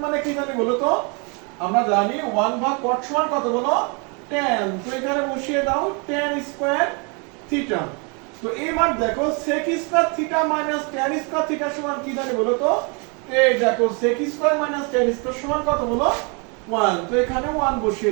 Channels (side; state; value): left; quieter; 33.6 dB